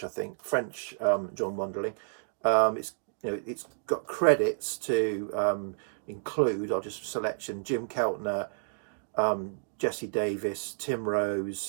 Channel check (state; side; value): silent; left; digital silence